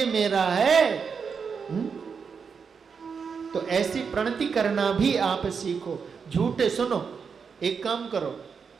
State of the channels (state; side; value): quieter; left; 5.9 dB